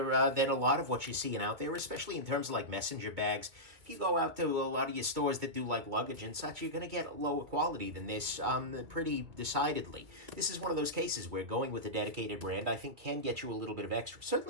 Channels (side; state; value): left; late; 2.3 ms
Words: than a lot of what you're seeing out there, especially in terms of, like, messenger bags. If you go out to a lot of your stores that do, like, luggage and such, you're going to get lower quality than this pretty decidedly. This is one of those cases where going with a dedicated brand, I think, can get you a little bit of extra.